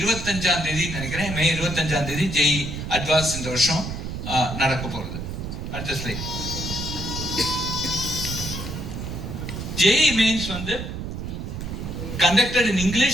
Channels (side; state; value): right; noise; rumble, 6 dB below the sound